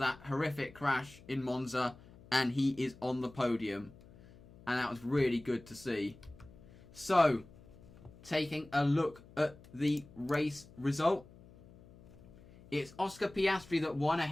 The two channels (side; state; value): left; noise; hum, 22 dB below the sound